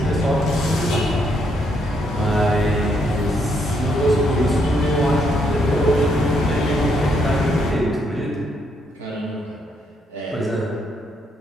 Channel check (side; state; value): both; normal; correlation 0.74